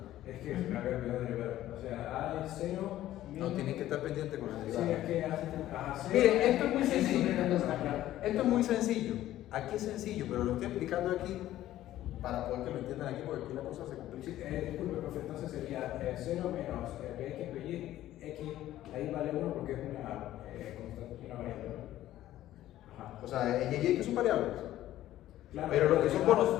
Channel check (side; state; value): right; quieter; 13.8 dB